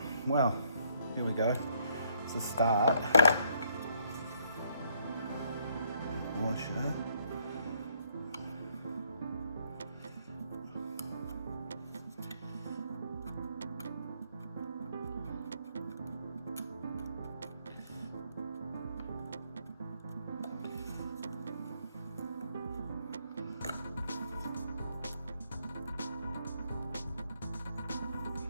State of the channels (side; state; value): both; inverted; correlation -0.70